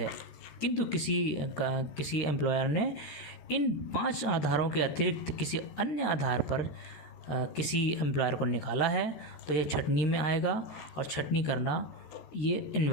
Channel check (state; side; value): late; right; 14 ms